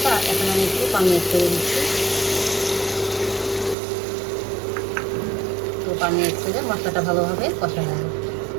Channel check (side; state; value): left; drops out; at 3.8 s